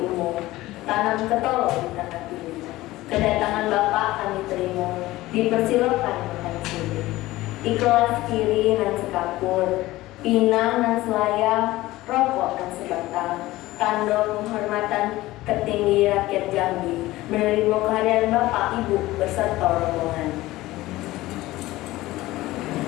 umum, tanam ketolong di tanah pilih. Kedatangan Bapak kami terima, dipersilakan makan sini. Di kelas kiri nan sekapur, pinang nan selayang, rokok nan sebatang, tanda penghormatan ketinggi rakyat Jambi, menerima kehadiran Bapak Ibu beserta rombongan.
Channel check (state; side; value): quieter; right; 17.7 dB